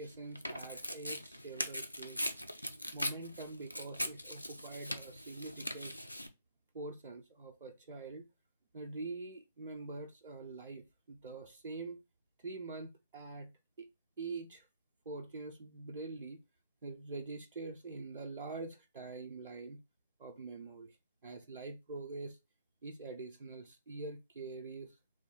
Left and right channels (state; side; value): inverted; both; correlation -0.69